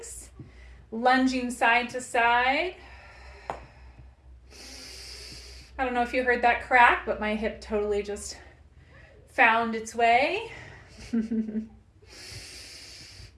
Lunging side to side. I don't know if you heard that crack, but my hip totally just found its way. And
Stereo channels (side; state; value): both; identical; correlation 1.00